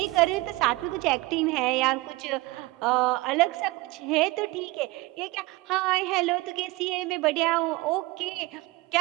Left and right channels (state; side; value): quieter; left; 21.4 dB